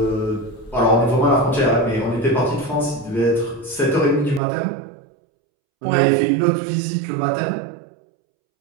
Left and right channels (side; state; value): left; drops out; at 4.4 s